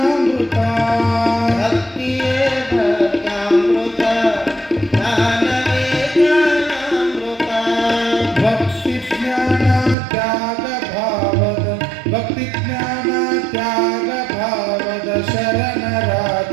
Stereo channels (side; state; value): left; drops out; at 10.0 s